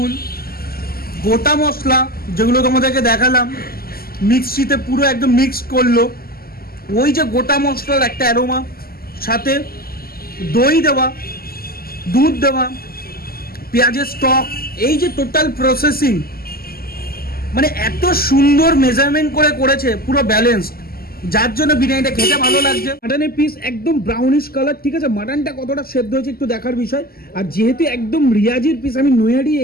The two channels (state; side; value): late; right; 0.44 ms